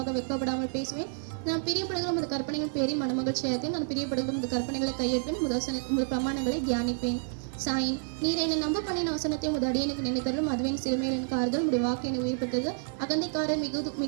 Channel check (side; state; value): left; silent; digital silence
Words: வெட்கப்படாமல் பேசுவேன். நான் பிரியப்படுகிற முது கற்பனைகள் பேரில் மனமகிழ்ச்சியாக. நான் பிரியப்படுகிற முது கற்பனைகளை கையேற்பேன். முது பிரமாணங்களை தியானிப்பேன். சாயின். நீர் என்னை நம்ப பண்ணின வசனத்தை உமது அடியனுக்கு நினைத்தருளும். அதுவே என் சிறுமையில் எனக்கு ஆறுதல். உடைய வாக்கு என்னை உயிர்ப்பித்தது. அகந்தைக்காரர்